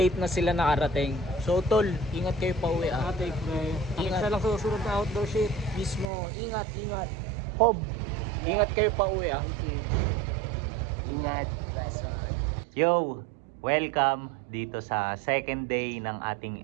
na sila nakarating. So tol, ingat kayo pa uwi ah. Ate, Ingat. isa lang susunod na outdoor shit. Mismo, ingat. Hob, ingat kayo pa uwi ah. Ingat. Yo, welcome dito sa second day ng ating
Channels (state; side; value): drops out; left; at 6.1 s